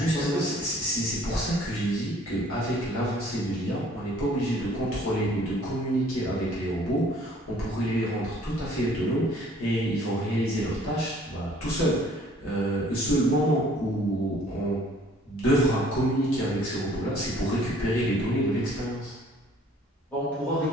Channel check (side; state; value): both; normal; correlation 0.57